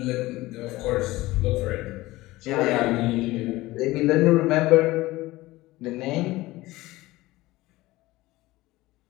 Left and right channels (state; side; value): quieter; right; 18.8 dB